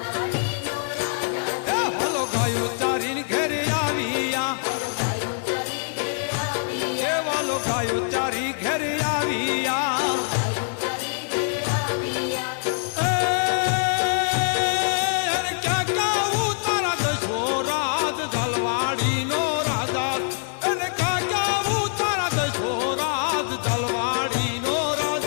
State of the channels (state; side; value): silent; right; digital silence